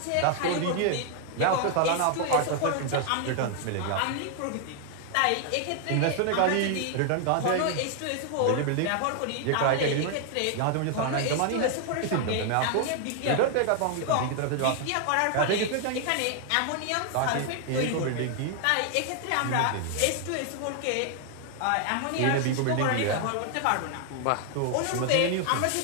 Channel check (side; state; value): both; different; correlation 0.00